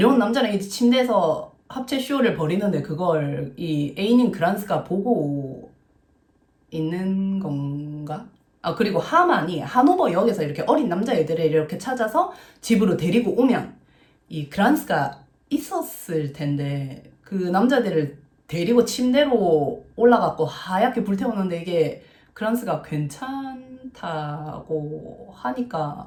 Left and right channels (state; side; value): identical; both; correlation 1.00